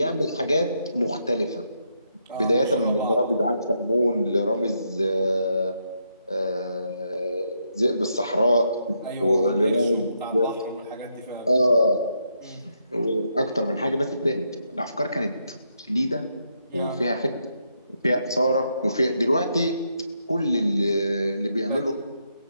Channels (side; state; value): both; inverted; correlation -0.79